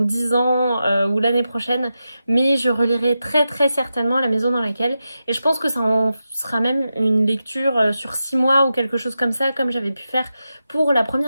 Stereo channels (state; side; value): inverted; both; correlation -0.90